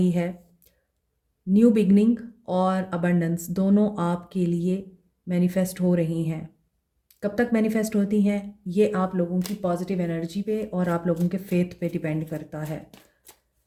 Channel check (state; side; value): identical; both; correlation 1.00